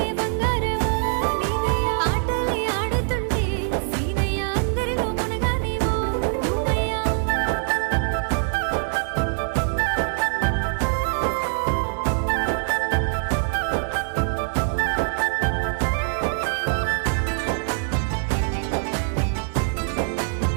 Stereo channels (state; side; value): silent; left; digital silence